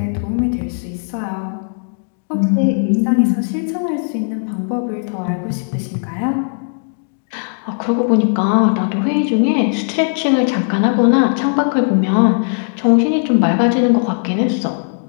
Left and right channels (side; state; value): right; silent; digital silence